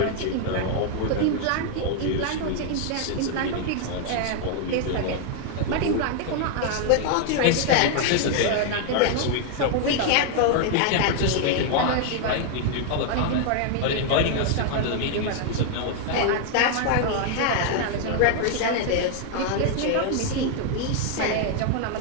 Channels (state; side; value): different; both; correlation 0.00